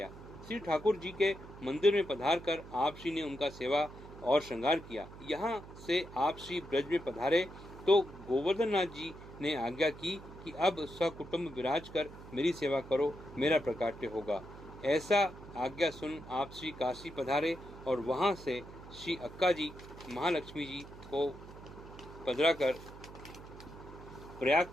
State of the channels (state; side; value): noise; right; hum, 16 dB below the sound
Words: श्री ठाकुर जी के मंदिर में पधार कर आप श्री ने उनका सेवा और श्रृंगार किया। यहाँ से आप श्री ब्रज में पधारे तो गोवर्धन नाथ जी ने आज्ञा की कि अब सकुटुंब विराज कर मेरी सेवा करो, मेरा प्रकाट्य होगा। ऐसा आज्ञा सुन आप श्री काशी पधारे और वहां से श्री अक्का जी महालक्ष्मी जी को पधरा कर प्रयाग